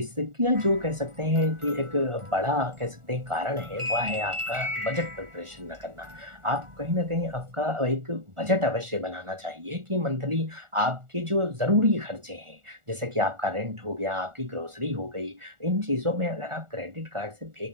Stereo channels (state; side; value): late; left; 1.4 ms